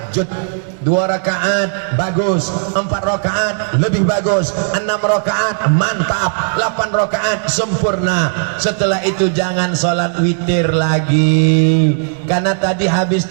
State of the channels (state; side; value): silent; left; digital silence